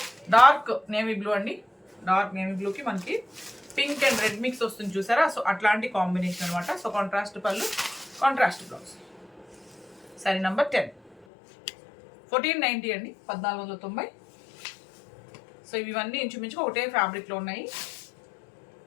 dark navy blue అండి. డార్క్ నేవీ బ్లూకి మనకి పింక్ అండ్ రెడ్ మిక్స్ వస్తుంది చూసారా. సో అట్లాంటి కాంబినేషన్ అనమాట. సో కాంట్రాస్ట్ పళ్ళు, కాంట్రాస్ట్ బ్లౌజ్. శారీ నెంబర్ 10, 1490 అండి, 1490. సో ఇవన్నీ ఇంచుమించుగా ఒకటే ఫ్యాబ్రిక్లో ఉన్నాయి.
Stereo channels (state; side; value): drops out; right; at 11.2 s